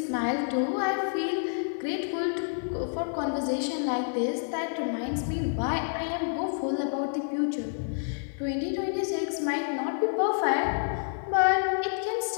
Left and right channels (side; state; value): right; silent; digital silence